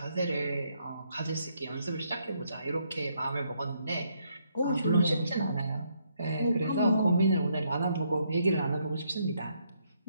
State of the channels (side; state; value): both; inverted; correlation -0.74